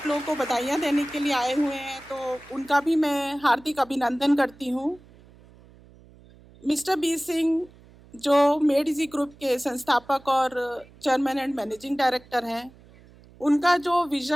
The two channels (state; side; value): noise; right; hum, 25 dB below the sound